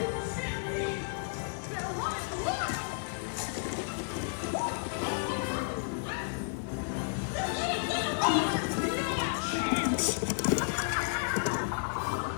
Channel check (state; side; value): silent; right; 56 dB below the other